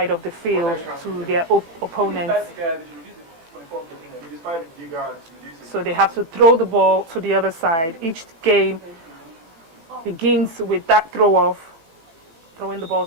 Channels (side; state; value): left; late; 18 ms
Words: of the field, to their opponents. So they have to throw the ball to the other side. Each game begins with that throw-off, throwing the ball